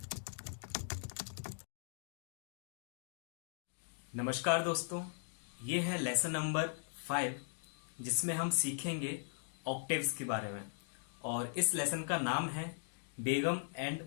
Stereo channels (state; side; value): silent; right; digital silence